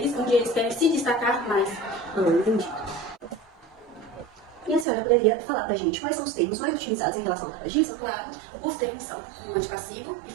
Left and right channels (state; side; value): drops out; left; at 4.9 s